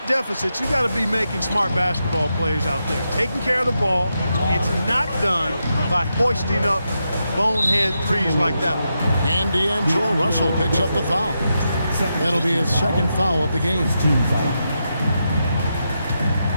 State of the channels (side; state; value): both; inverted; correlation -0.85